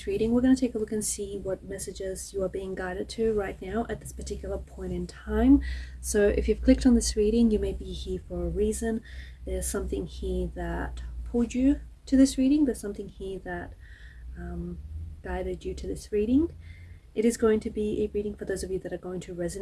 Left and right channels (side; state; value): both; identical; correlation 1.00